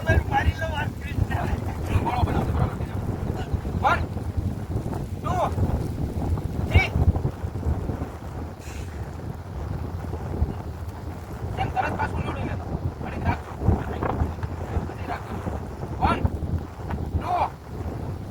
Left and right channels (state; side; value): identical; both; correlation 1.00